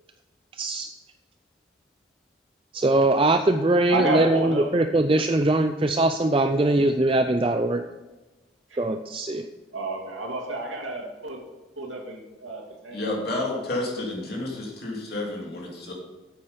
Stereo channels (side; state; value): both; normal; correlation 0.49